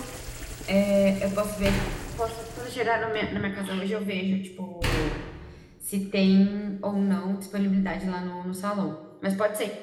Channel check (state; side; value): identical; both; correlation 1.00